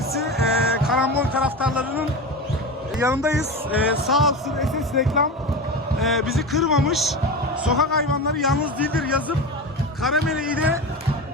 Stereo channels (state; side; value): normal; both; correlation 0.25